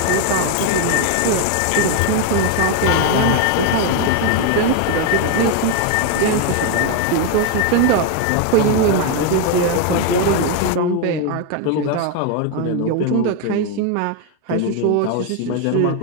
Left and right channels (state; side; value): different; both; correlation 0.01